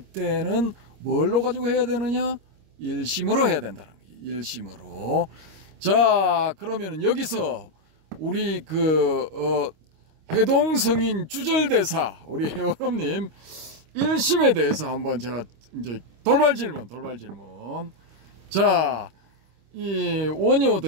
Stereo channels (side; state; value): left; late; 25 ms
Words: 뭘로 가지고 해야 되느냐? 일심으로 해야 된다는 거예요. 일심으로. 자, 그러면은 여기서 우리 해동성인 주절대사 우리 회원님 일심에 대해서 한번 제가 이제 돌발 질문. 자, 이 원효